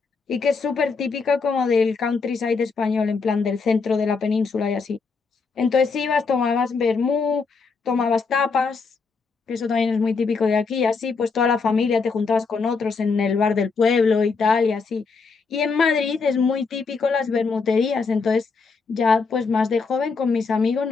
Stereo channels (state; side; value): quieter; right; 4.8 dB